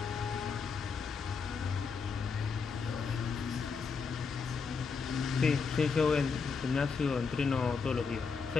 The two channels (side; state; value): right; quieter; 5.3 dB